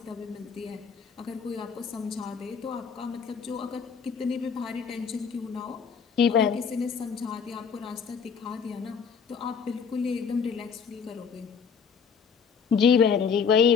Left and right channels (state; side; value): quieter; right; 6.4 dB